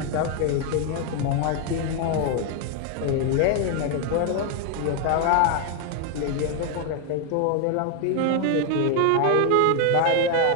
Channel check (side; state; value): both; different; correlation 0.01